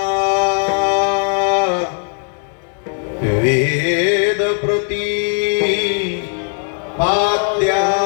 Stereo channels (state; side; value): silent; right; 55 dB below the other